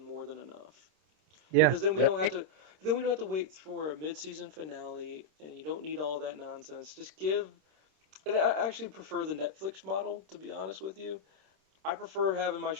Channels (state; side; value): late; left; 26 ms